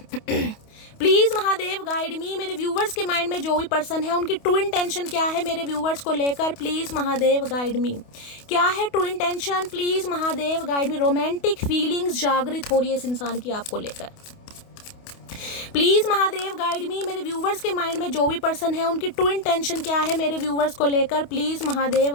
प्लीज महादेव गाइड मी। मेरे व्यूवर्स के माइंड में जो भी पर्सन है उनकी ट्रू इंटेंशन क्या है मेरे व्यूवर्स को लेकर, प्लीज महादेव गाइड मी। क्या है true intention, please Mahadev guide me. Romantic feelings जागृत हो रही है इस इंसान की आपको लेकर, प्लीज महादेव गाइड मी। मेरे व्यूवर्स के माइंड में जो भी पर्सन है उनकी ट्रू इंटेंशन क्या है मेरे व्यूवर्स को लेकर, please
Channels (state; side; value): late; right; 28 ms